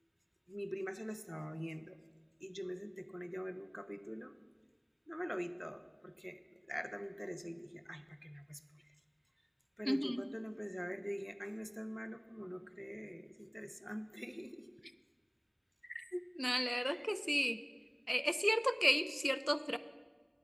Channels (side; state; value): both; identical; correlation 1.00